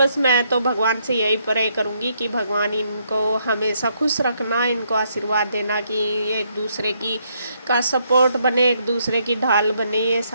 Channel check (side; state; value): both; inverted; correlation -0.74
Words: मैं तो भगवान से यही प्रे करूँगी कि भगवान इनको हमेशा खुश रखना, इनको आशीर्वाद देना कि एक दूसरे की का सपोर्ट बने, एक दूसरे की ढाल बने ये